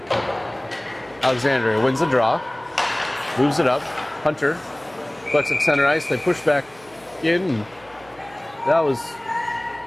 Alexandria wins the draw, moves it up. Hunter collects at center ice. They push back in. And that was,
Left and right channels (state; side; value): noise; right; hum, 27 dB below the sound